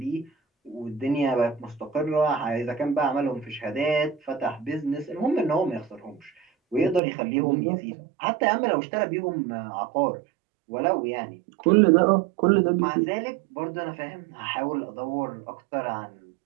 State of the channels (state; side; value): drops out; left; at 7.0 s